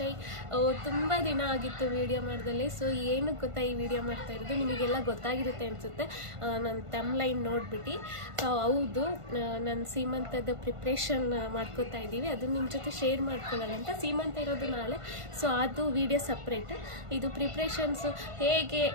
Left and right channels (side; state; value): left; late; 1.5 ms